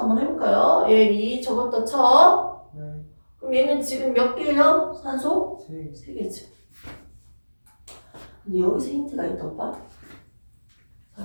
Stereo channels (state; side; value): inverted; both; correlation -1.00